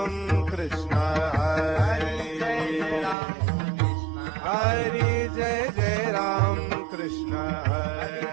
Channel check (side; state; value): left; drops out; at 3.2 s